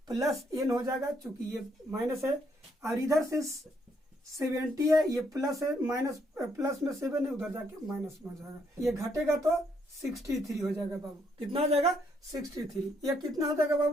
प्लस n हो जाएगा, चूंकि ये माइनस है, और इधर से 70 है, ये प्लस है, माइनस प्लस में 7 है, उधर जाके माइनस में हो जाएगा। ये घटेगा तो 63 हो जाएगा बाबू। कितना हो जाएगा? 63। ये कितना हो जाएगा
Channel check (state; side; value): normal; both; correlation 0.72